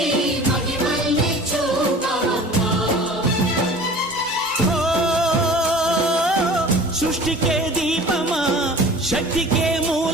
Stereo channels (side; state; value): both; normal; correlation 0.43